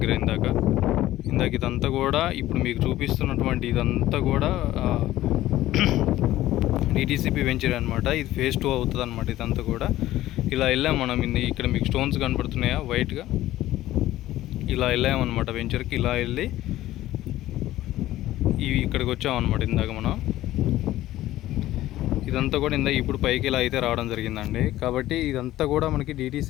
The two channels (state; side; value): quieter; right; 15.0 dB